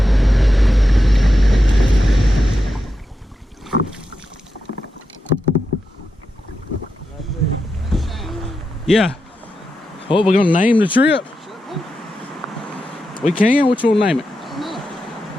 Yeah. What, we're gonna name the trip? We can? Which one name it? I don't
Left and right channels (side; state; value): both; normal; correlation 0.88